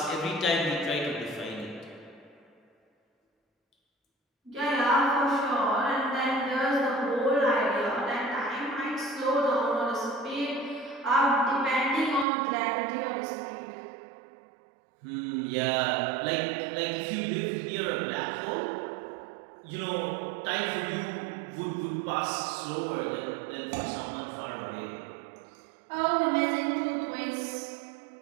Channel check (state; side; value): drops out; left; at 12.2 s